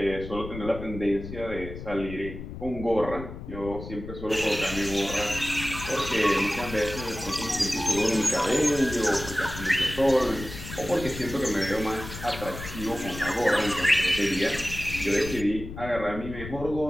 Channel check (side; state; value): left; noise; rumble, 10 dB below the sound